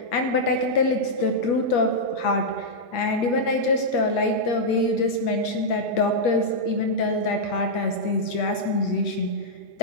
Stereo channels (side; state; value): right; late; 8.4 ms